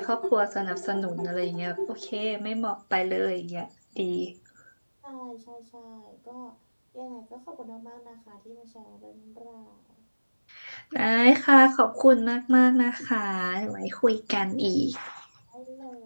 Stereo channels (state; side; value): inverted; both; correlation -1.00